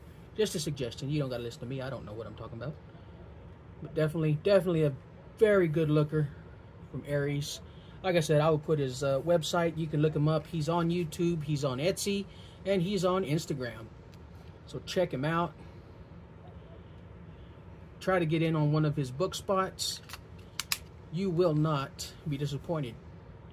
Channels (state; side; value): identical; both; correlation 1.00